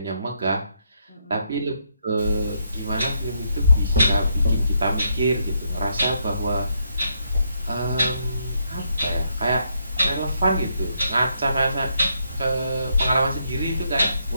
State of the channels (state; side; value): inverted; both; correlation -0.76